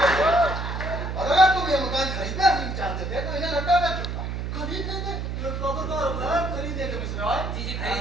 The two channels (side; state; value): right; noise; hum, 4 dB below the sound